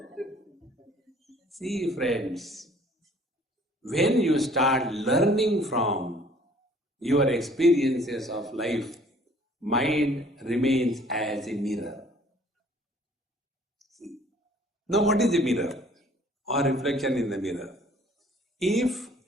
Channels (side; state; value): both; normal; correlation 0.56